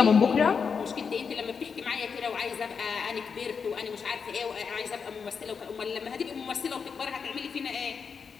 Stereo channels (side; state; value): right; quieter; 6.0 dB